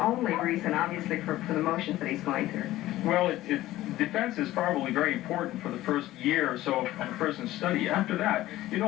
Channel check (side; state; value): right; quieter; 15.7 dB